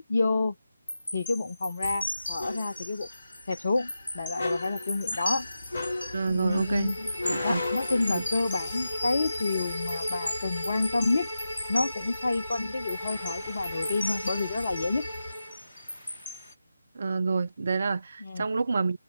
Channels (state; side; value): inverted; both; correlation -0.90